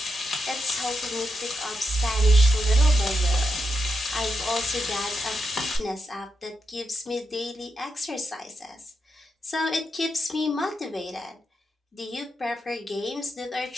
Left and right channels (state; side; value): normal; both; correlation 0.85